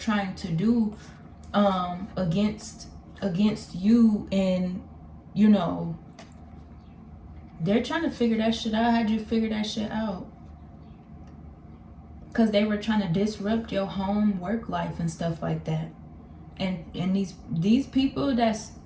to do against you, and you know, they're trying to figure that shit out. How'd you figure that shit out? Because they were trying to disrupt your home, work life, and stuff like that. And these people, that's,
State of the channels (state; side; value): identical; both; correlation 1.00